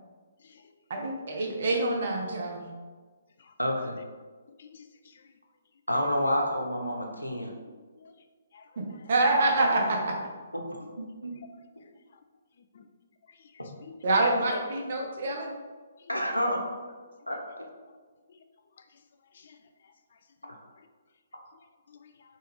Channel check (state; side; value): inverted; both; correlation -0.72